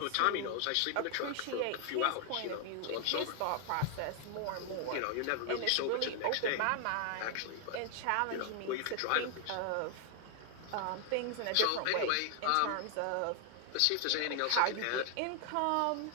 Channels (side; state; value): both; different; correlation 0.00